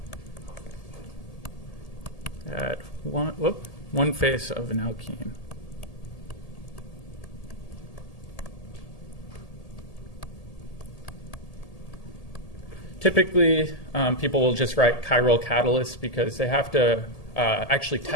At one face of an alkene. Typically, people will just write chiral catalysts because they have to actually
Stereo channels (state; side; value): late; right; 1.8 ms